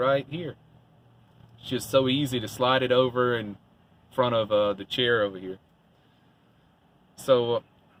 here. It's just so easy to slide it over in front of the chair over here. So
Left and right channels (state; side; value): identical; both; correlation 1.00